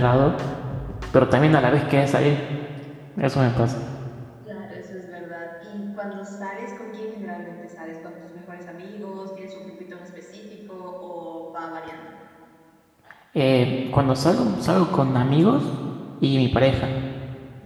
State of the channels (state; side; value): identical; both; correlation 1.00